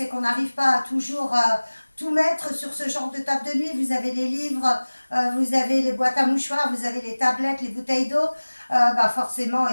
qu'on n'arrive pas à toujours tout mettre sur ce genre de table de nuit. Vous avez les livres, vous avez les boîtes à mouchoirs, vous avez les tablettes, les bouteilles d'eau. Forcément,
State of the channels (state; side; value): inverted; both; correlation -1.00